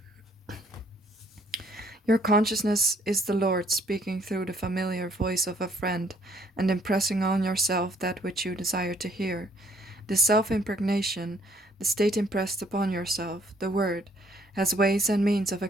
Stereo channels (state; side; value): normal; both; correlation 0.64